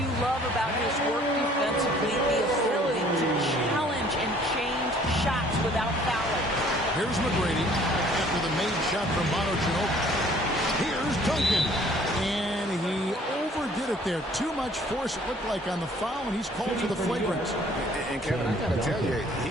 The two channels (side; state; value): both; normal; correlation 0.56